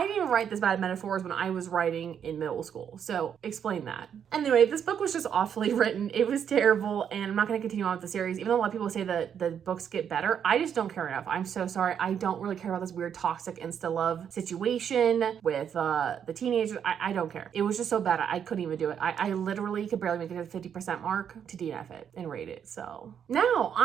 didn't write this bad metaphors when I was writing in middle school. So explain that. Anyway, this book was just awfully written. It was terrible, and I'm not going to continue on with the series. Even though a lot of people say that the books get better, I just don't care enough. I'm so sorry. I don't really care about this weird toxic insta-love situation with the teenagers. I don't care. It was just so bad. I couldn't even do it. I literally could barely make it to the 50% mark to DNF it and rate it. So now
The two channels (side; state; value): left; quieter; 8.3 dB